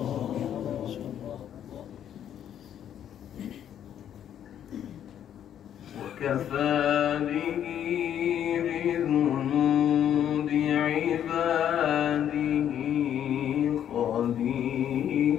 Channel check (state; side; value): quieter; right; 9.9 dB